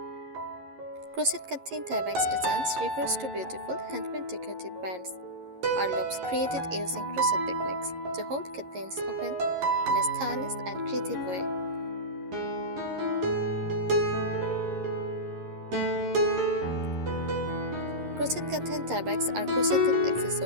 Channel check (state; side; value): late; left; 11 ms